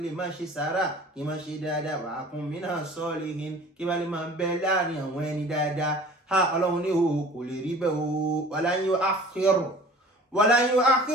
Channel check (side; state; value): both; normal; correlation 0.45